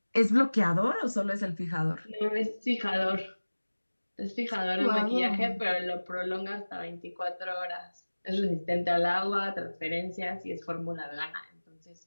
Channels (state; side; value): inverted; both; correlation -1.00